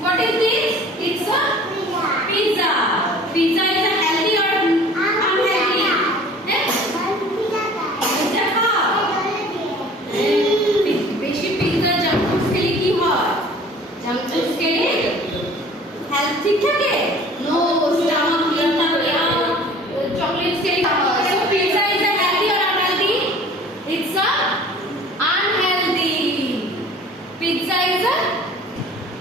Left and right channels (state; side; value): normal; both; correlation 0.47